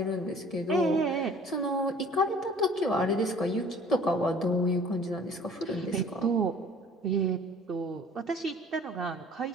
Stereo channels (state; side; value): normal; both; correlation 0.50